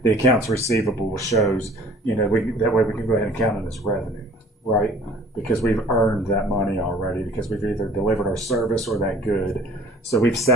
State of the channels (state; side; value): normal; both; correlation 0.50